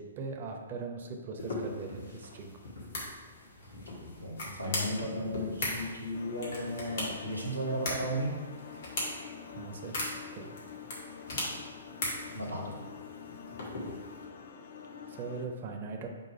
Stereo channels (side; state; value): both; inverted; correlation -0.45